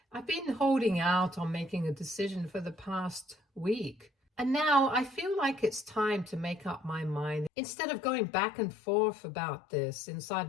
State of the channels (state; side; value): drops out; right; at 7.5 s